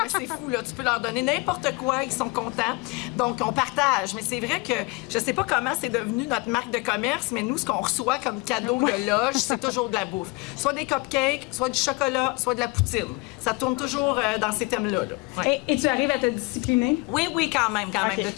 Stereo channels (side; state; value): right; quieter; 26.4 dB